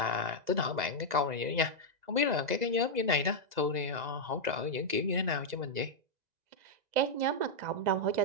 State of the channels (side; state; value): left; late; 2.0 ms